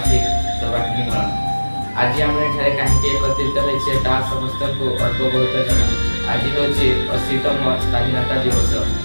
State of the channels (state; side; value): inverted; both; correlation -1.00